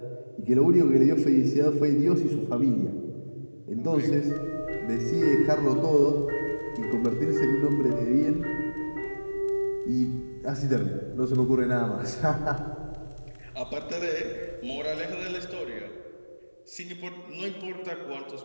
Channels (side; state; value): both; inverted; correlation -1.00